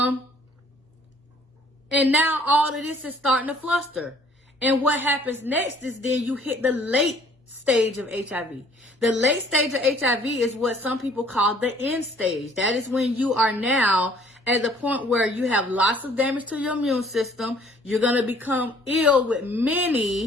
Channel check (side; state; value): both; normal; correlation 0.57